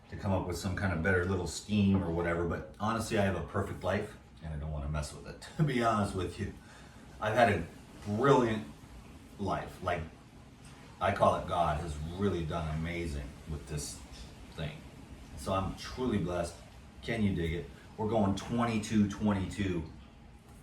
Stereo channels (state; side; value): identical; both; correlation 1.00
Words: to come up with some kind of better little scheme or whatever, but honestly, I have a perfect life, and I don't want to mess with it, to be honest with you. I've had a brilliant life. Like, I call it God has really done amazing with this thing. So I'm truly blessed. Can you dig it? We're going 22-22.